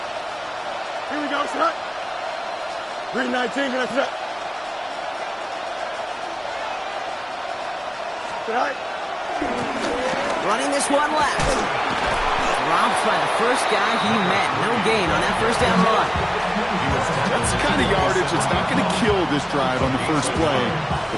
Here we go, set. 319, gonna set. Set. Running this one left. Dropped by the first guy he met. No gain on that 1st down run. That's the kind of yardage that's not going to kill this drive on the first play,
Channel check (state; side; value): identical; both; correlation 1.00